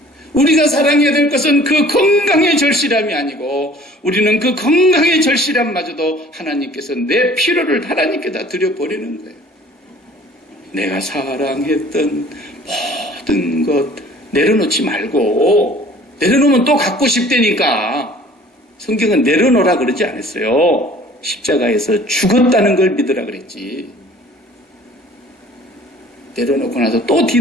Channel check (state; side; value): normal; both; correlation 0.50